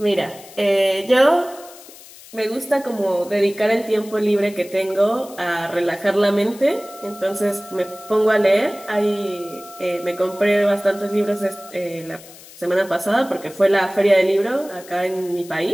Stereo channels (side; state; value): left; noise; hiss, 20 dB below the sound